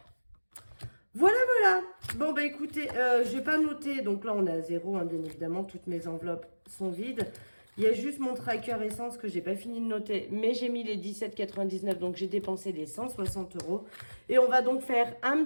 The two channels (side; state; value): both; inverted; correlation -1.00